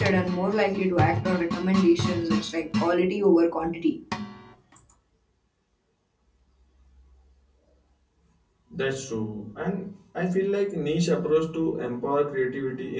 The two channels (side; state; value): both; identical; correlation 1.00